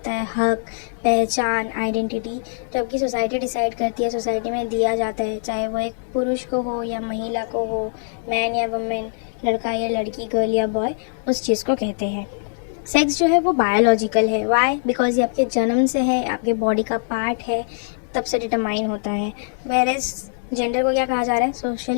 है हक, पहचान, आइडेंटिटी, जो आपकी सोसाइटी डिसाइड करती है, सोसाइटी में दिया जाता है, चाहे वो एक पुरुष को हो या महिला को हो, मैन या वुमेन, लड़का या लड़की, गर्ल या बॉय, उस चीज़ को कहते हैं। सेक्स जो है वो बायोलॉजिकल है। वाई? बिकॉज ये आपके जन्म से है, आपके बॉडी का पार्ट है, तब से डिटरमाइन होता है। वेयरएज जेंडर को क्या कहा जा रहा है,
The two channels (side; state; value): right; silent; digital silence